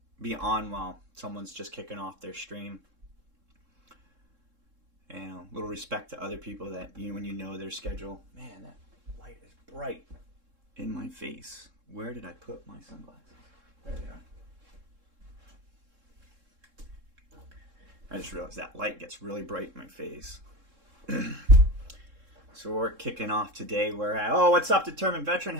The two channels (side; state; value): left; late; 3.7 ms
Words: be on while someone's just kicking off their stream. And a little respect to other people that when you know their schedule. Man, that light is bright in my face. Where did I put my sunglasses? There they are. I just realized that light gets really bright in my face. So we're kicking off today. We're at, oh, what's up, Determined Veteran?